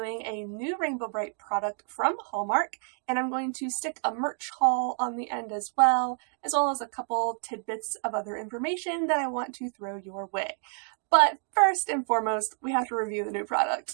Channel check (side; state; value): left; silent; 57 dB below the other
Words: a new Rainbow Brite product from Hallmark, and I'm going to stick a merch haul on the end as well as a couple tidbits of other information that I want to throw your way. But first and foremost, we have to review the new